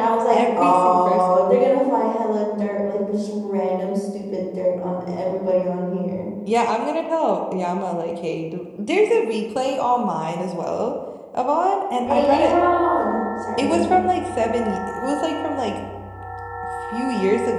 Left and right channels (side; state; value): both; identical; correlation 1.00